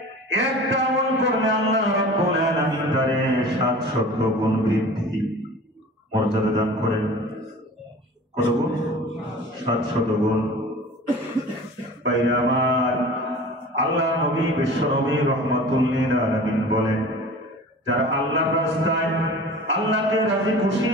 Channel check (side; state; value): both; normal; correlation 0.40